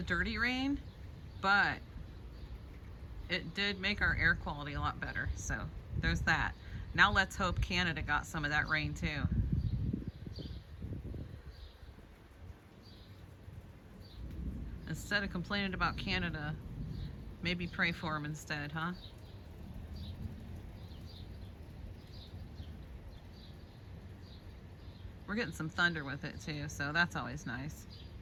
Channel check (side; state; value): both; identical; correlation 1.00